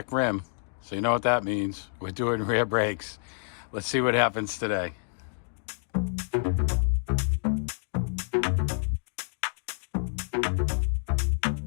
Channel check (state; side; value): silent; right; digital silence